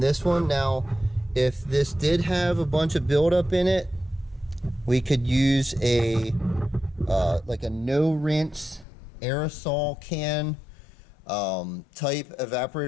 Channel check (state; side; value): drops out; right; at 8.8 s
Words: one. Now, if this did have a bunch of buildup in it, we could use a like a no rinse aerosol can type